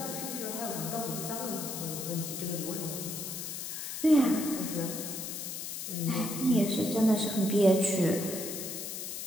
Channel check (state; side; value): noise; left; hiss, 6 dB below the sound